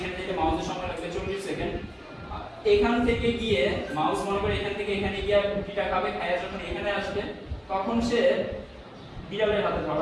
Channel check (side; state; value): both; identical; correlation 1.00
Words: যেতে মাউসের সময় লাগবে 40 সেকেন্ড। এখান থেকে গিয়ে মাউস মনে করে এখান থেকে এখানে গিয়ে রুটিটা খাবে, খায়া যখন এখানে আসবে তখন সে বিড়ালের হাতে